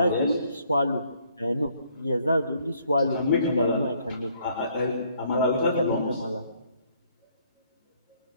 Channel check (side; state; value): both; inverted; correlation -0.66